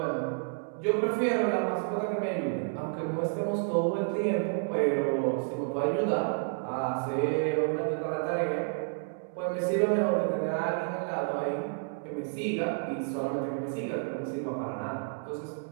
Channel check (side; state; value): left; silent; digital silence